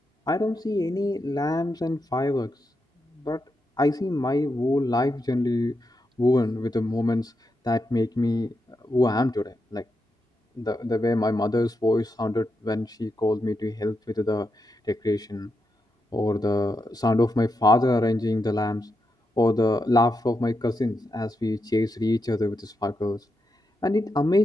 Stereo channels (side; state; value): both; normal; correlation 0.85